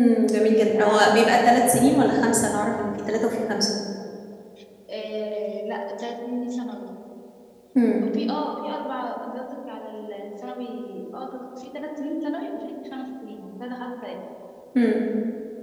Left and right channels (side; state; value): both; identical; correlation 1.00